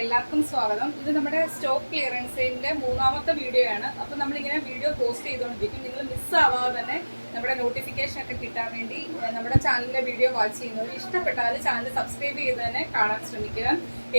എല്ലാവർക്കും സ്വാഗതം. ഇത് നമ്മുടെ സ്റ്റോക്ക് ക്ലിയറൻസിന്റെ മൂന്നാമത്തെ വീഡിയോ ആണ്. അപ്പോൾ നമ്മളിങ്ങനെ വീഡിയോ പോസ്റ്റ് ചെയ്തുകൊണ്ടിരിക്കും. നിങ്ങൾ മിസ്സാവാതെ തന്നെ നമ്മുടെ നോട്ടിഫിക്കേഷൻ ഒക്കെ കിട്ടാൻ വേണ്ടി നമ്മുടെ ചാനലിലെ വീഡിയോ വാച്ച് ചെയ്യുന്നവർ ഇഷ്ടപ്പെട്ടാൽ ചാനൽ സബ്സ്ക്രൈബ് ചെയ്ത് തന്നെ കാണാൻ ശ്രമിക്കുക.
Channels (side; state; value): both; inverted; correlation -1.00